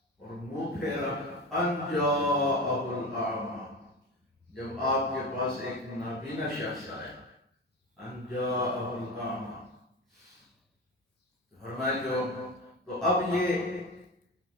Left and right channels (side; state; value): both; normal; correlation 0.26